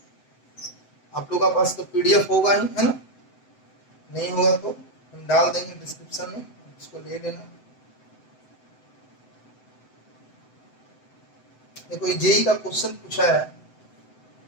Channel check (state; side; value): late; right; 7.9 ms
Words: आप लोगों का पास तो पीडीएफ होगा ही, है ना? नहीं होगा तो हम डाल देंगे डिस्क्रिप्शन में, इसको ले लेना। देखो ये जेई का क्वेश्चन पूछा है,